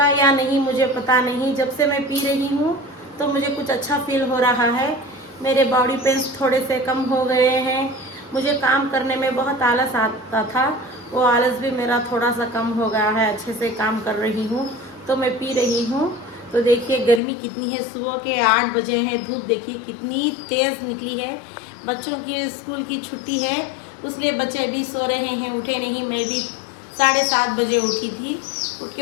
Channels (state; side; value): drops out; right; at 17.2 s